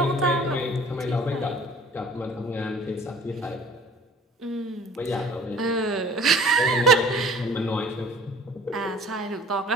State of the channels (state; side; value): normal; both; correlation 0.49